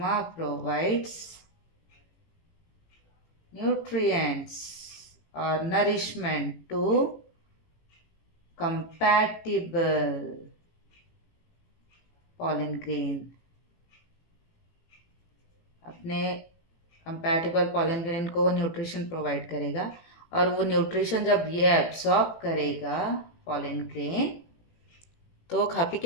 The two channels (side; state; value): right; late; 18 ms